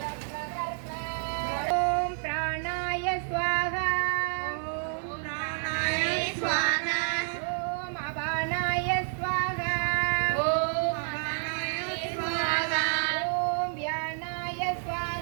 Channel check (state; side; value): silent; left; 58 dB below the other